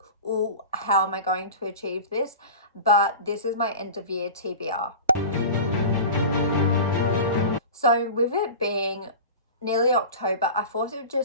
oh, how am I going to achieve this? But this is my end of year TBR. So with it being nearly October, I thought it would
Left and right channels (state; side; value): inverted; both; correlation -0.33